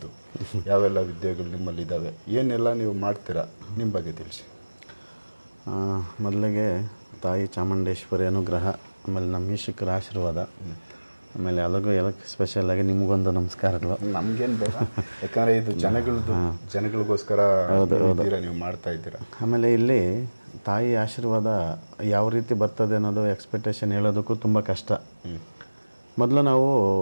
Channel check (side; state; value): both; inverted; correlation -1.00